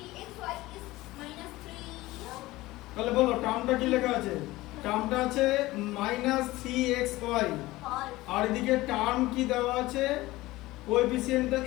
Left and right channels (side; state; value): right; quieter; 18.6 dB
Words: is minus 3 তাহলে বলো টার্মটা কি লেখা আছে টার্মটা আছে -3xy ফল আর এদিকে টার্ম কি দেওয়া আছে কোএফিসিয়েন্টটা